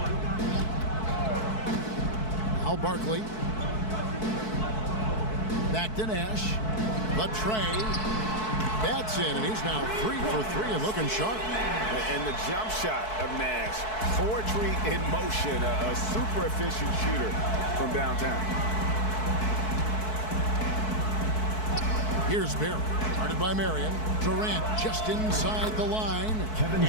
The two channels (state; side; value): late; right; 4.6 ms